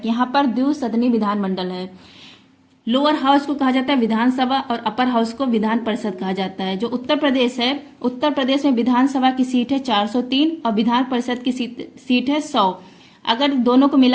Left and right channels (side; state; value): both; identical; correlation 1.00